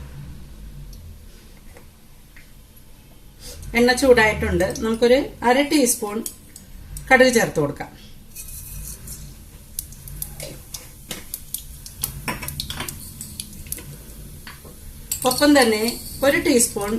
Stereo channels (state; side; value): identical; both; correlation 1.00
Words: എണ്ണ ചൂടായിട്ടുണ്ട്. നമുക്കൊരു 1/2 ടീസ്പൂൺ കടുക് ചേർത്ത് കൊടുക്കാം. ഒപ്പം തന്നെ 1 ടീസ്പൂൺ